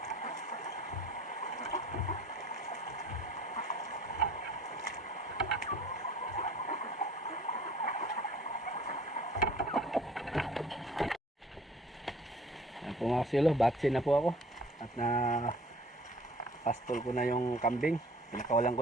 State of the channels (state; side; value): normal; both; correlation 0.51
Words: Yan po mga silo, batsi na po ako. At na pastol ko na yung kambing. Pinakawalan ko